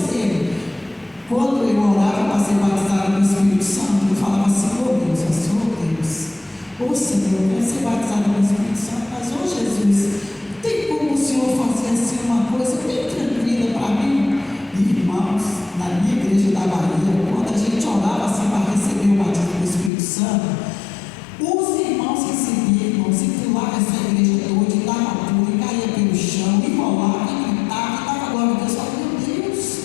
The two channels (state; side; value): drops out; right; at 19.9 s